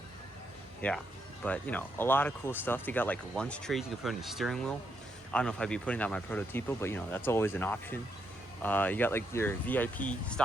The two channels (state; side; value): normal; both; correlation 0.79